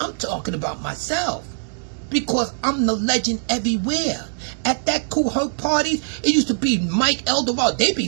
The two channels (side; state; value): left; silent; digital silence